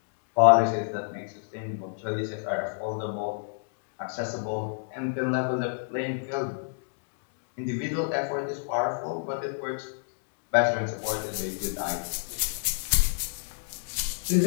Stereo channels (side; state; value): right; silent; digital silence